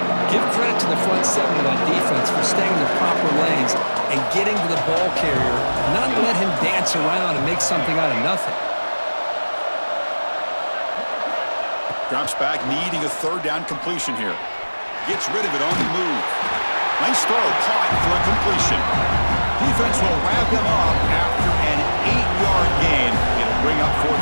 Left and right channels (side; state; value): both; inverted; correlation -1.00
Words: Give credit to the front 7 of that defense for staying in the proper lanes and getting to the ball carrier, not let him dance around and make something out of nothing. Drops back, needing a 3rd down completion here. Gets rid of it on the move. Nice throw, caught for a completion. Defense will wrap him up after an 8-yard gain. It'll bring up